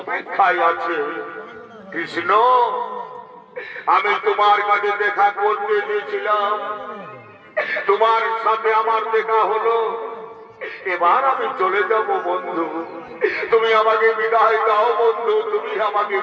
আছে। কৃষ্ণ, আমি তোমার কাছে দেখা করতে চেয়েছিলাম, তোমার সাথে আমার দেখা হলো। এবার আমি চলে যাব বন্ধু, তুমি আমাকে বিদায় দাও বন্ধু, তুমি আমাকে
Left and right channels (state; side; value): identical; both; correlation 1.00